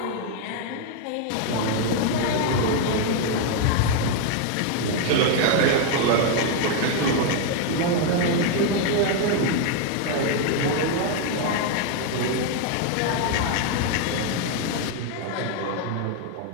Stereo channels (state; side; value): different; both; correlation 0.01